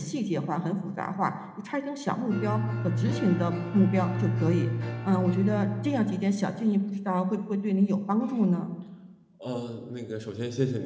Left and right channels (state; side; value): identical; both; correlation 1.00